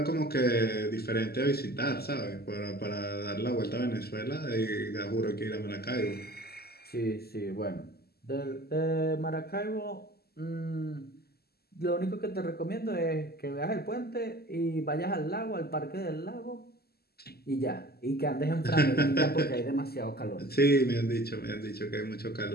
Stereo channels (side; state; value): right; late; 0.46 ms